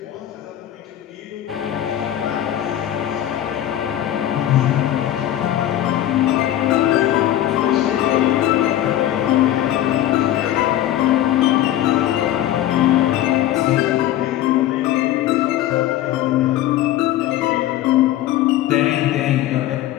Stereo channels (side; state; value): right; quieter; 12.8 dB